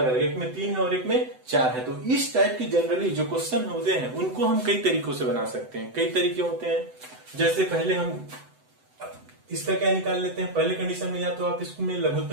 अलग। एक में 3 है और एक में 4 है। तो इस टाइप की जनरली जो क्वेश्चन होते हैं उनको हम कई तरीकों से बना सकते हैं। कई तरीके होते हैं। जैसे पहले हम इसका क्या निकाल लेते हैं, पहले कंडीशन में या तो आप इसमें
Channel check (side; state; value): left; late; 7.9 ms